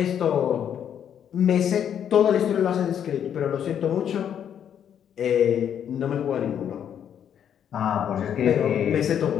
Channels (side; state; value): right; quieter; 9.0 dB